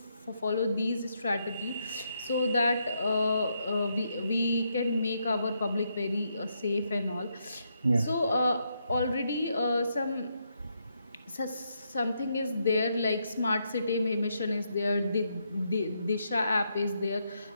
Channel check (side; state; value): both; inverted; correlation -0.79